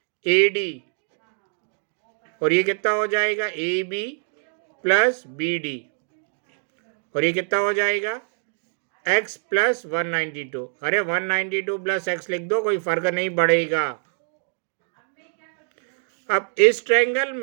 ए डी, और ये कितना हो जाएगा, A B, plus B D, और ये कितना हो जाएगा x प्लस 192। अरे 192 प्लस x लिख दो, कोई फर्क नहीं पड़ेगा। अब इस ट्रायंगल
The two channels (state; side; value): silent; left; digital silence